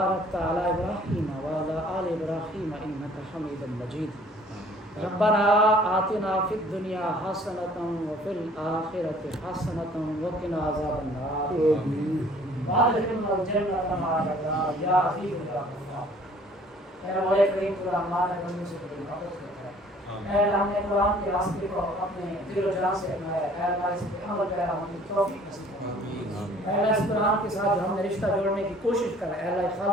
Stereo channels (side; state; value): both; normal; correlation 0.55